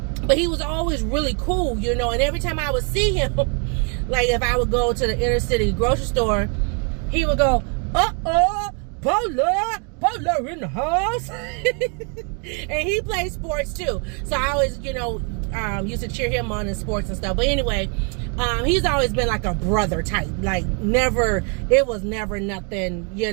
but he was always really cool, you know. And every time I would see him, like if I would go to the inner city grocery store, he would go, Paula in the house. And he plays sports too, so I always, you know, used to cheer him on in sports and stuff. But anyway, he's always been like a brother type. Like, never, it was never nothing,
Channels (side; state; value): left; quieter; 37.8 dB